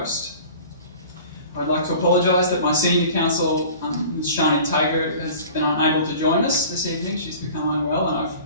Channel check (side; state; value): both; inverted; correlation -0.43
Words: I'd like to apologise that my senior counsel, Ms Shani Tager, has been unable to join us this evening. She's become unwell and I've